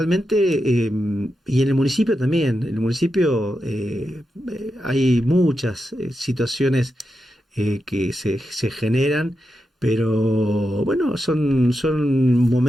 y en el municipio también, en el municipio hay muchas situaciones que se generan, pero bueno, son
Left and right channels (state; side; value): normal; both; correlation 0.88